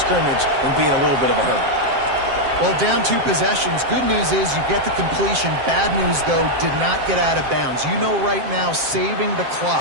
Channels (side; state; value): left; late; 7.6 ms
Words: and be in a little bit of a hurry. Well, down 2 possessions. Good news is you get the completion. Bad news, though, did not get out of bounds. You know right now, saving the